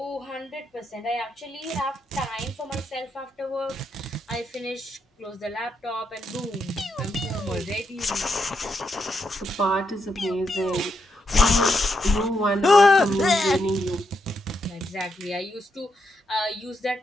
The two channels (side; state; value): both; normal; correlation 0.81